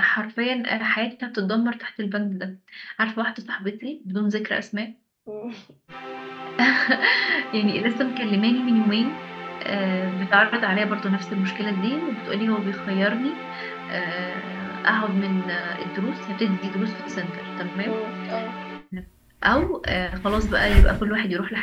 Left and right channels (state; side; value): identical; both; correlation 1.00